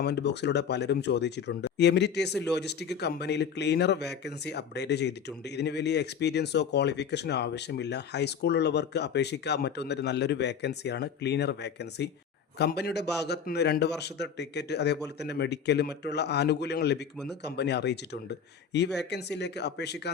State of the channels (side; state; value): right; quieter; 7.1 dB